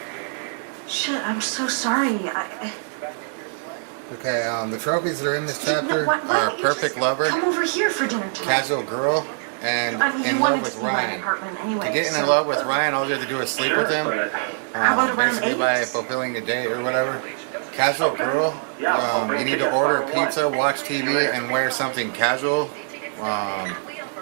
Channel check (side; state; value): left; silent; digital silence